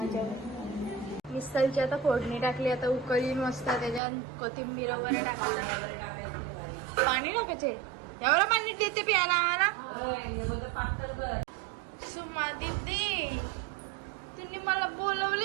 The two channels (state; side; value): drops out; left; at 4.0 s